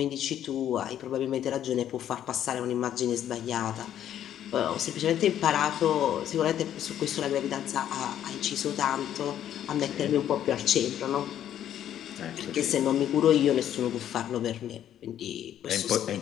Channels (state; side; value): quieter; right; 10.8 dB